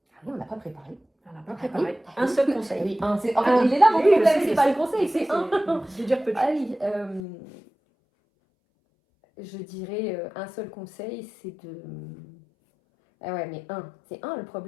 Ah oui, on n'a pas préparé. On n'a pas préparé. Un seul conseil. Oui, il est là mon problème, c'est pas le conseil, c'est un. Je veux dire petit. Ah oui, je dirais un seul conseil, c'est de... Ah ouais, mais c'est un le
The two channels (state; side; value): drops out; right; at 7.2 s